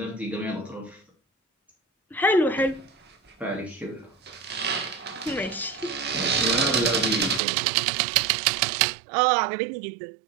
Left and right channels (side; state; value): left; drops out; at 7.4 s